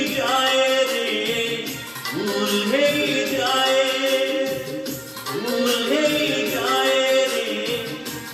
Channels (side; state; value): both; identical; correlation 1.00